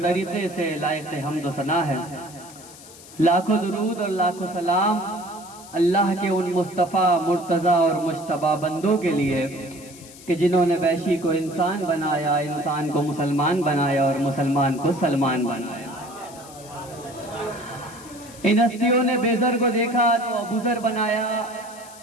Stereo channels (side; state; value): left; noise; hiss, 19 dB below the sound